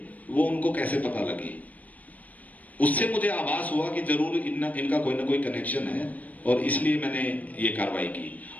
वो उनको कैसे पता लगी? उससे मुझे आभास हुआ कि जरूर इनका कोई ना कोई कनेक्शन है, और इसलिए मैंने ये कार्रवाई की।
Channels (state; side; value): late; right; 0.074 ms